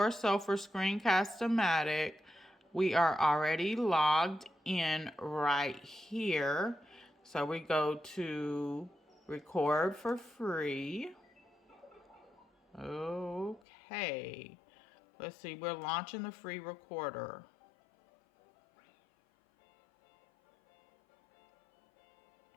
so for Screencast O Matic, we are already logged in right here. So we go to record for free. Okay. Let's see, we're launching the free recorder.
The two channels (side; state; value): right; drops out; at 13.6 s